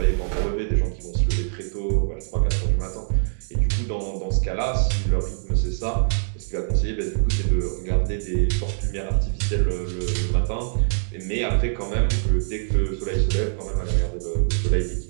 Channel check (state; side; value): silent; left; digital silence